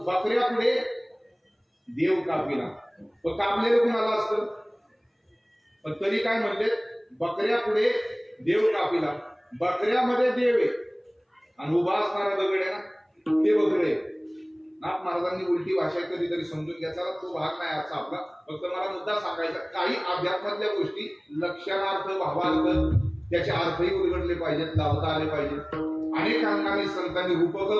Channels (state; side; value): identical; both; correlation 1.00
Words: बकऱ्या पुढे देव कापिला. पण कापलेलं कुणाला असतं, पण तरी काय म्हणले बकऱ्या पुढे देव कापिला. बकऱ्यामध्ये देव आहे आणि उभा असणारा दगड आहे ना ते बकरे. नाथ महाराजांनी उलटी भाषा कधीतरी समजून घ्यायचा, तो भाग नाही आजचा आपला. फक्त मला मुद्दा सांगायचा, काही अध्यात्मातल्या गोष्टी लक्षणार्थ भावार्थ त्याचे अर्थही उलगडले पाहिजेत, लावता आले पाहिजेत. अनेक अंगाने संतांनी रूपक